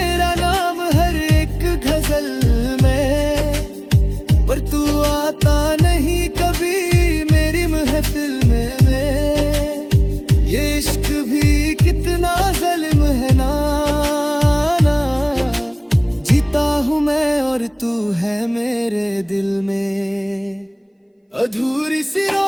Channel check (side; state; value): both; identical; correlation 1.00